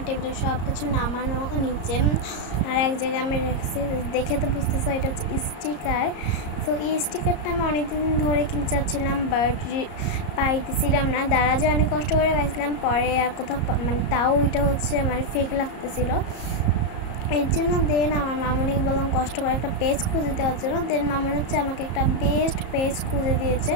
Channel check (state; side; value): late; right; 34 ms